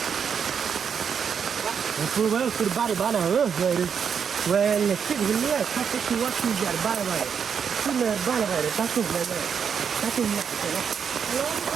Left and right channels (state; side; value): quieter; left; 7.0 dB